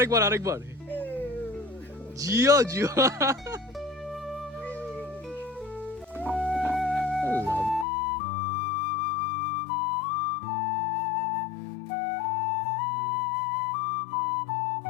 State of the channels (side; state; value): right; drops out; at 7.9 s